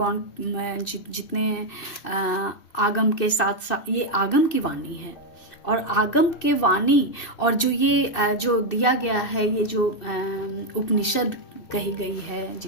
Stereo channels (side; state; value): right; late; 2.6 ms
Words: जितने आगम के साथ साथ, ये आगम की वाणी है और आगम के वाणी और जो ये जो दिया गया है, ये जो उपनिषद कही गई है,